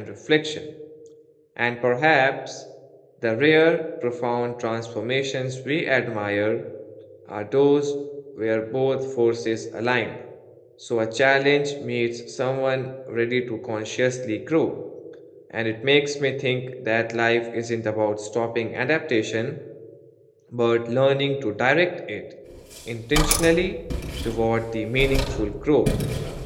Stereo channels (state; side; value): identical; both; correlation 1.00